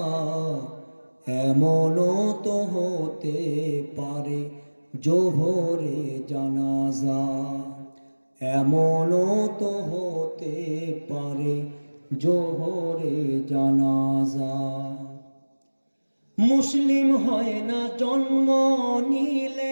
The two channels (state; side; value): inverted; both; correlation -1.00